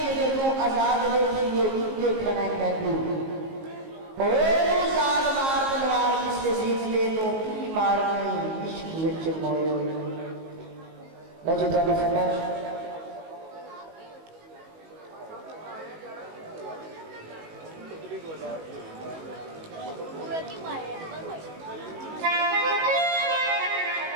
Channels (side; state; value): left; late; 19 ms